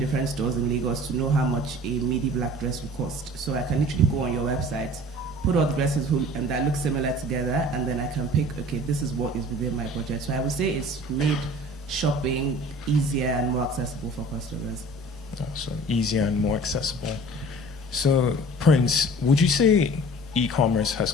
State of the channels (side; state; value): both; normal; correlation 0.45